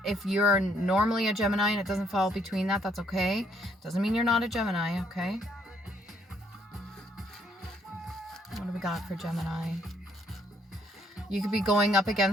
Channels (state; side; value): normal; both; correlation 0.69